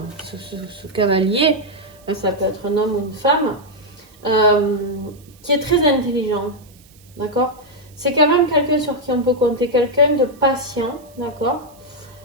ce cavalier, ça peut être un homme ou une femme, qui est très intelligent, d'accord? C'est quand même quelqu'un sur qui on peut compter, quelqu'un de patient, d'accord?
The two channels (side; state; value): right; noise; hiss, 27 dB below the sound